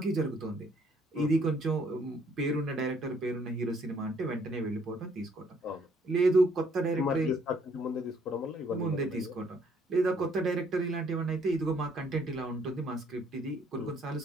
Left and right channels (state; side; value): normal; both; correlation 0.65